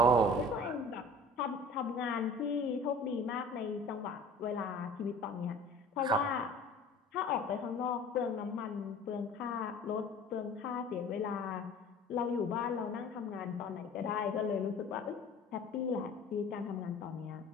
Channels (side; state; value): both; normal; correlation 0.45